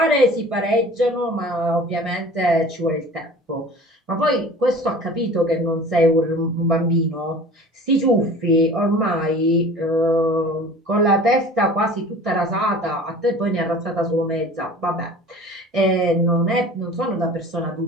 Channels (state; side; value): normal; both; correlation 0.42